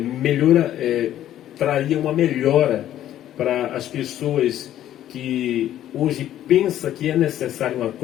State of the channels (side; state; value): right; quieter; 12.1 dB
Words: traria uma melhora para as pessoas que hoje pensam que é necessário uma